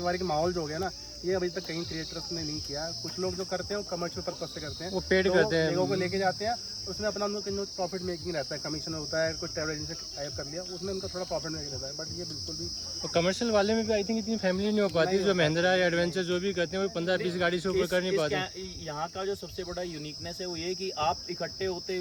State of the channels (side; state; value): both; identical; correlation 1.00